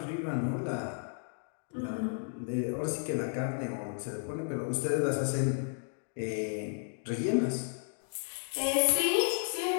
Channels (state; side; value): silent; right; 56 dB below the other